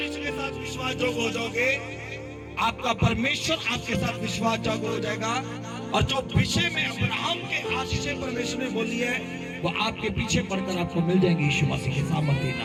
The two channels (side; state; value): both; identical; correlation 1.00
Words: के साथ विश्वास जोग हो जाओगे, आपका परमेश्वर आपके साथ विश्वास जोग हो जाएगा। और जो विषय में अब्राहम के आशीष परमेश्वर ने बोली है, वो आपके पीछे पड़कर आपको मिल जाएंगे यीशु मसीह के सामर्थ्य